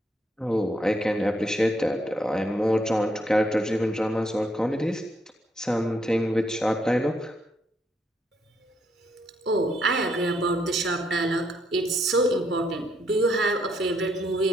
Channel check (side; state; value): both; normal; correlation 0.74